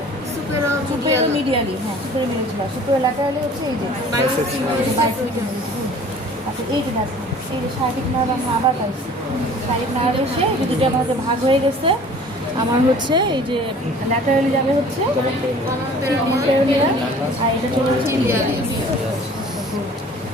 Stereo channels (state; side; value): normal; both; correlation 0.48